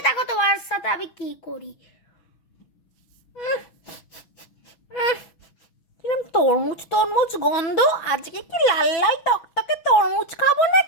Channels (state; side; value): late; right; 6.1 ms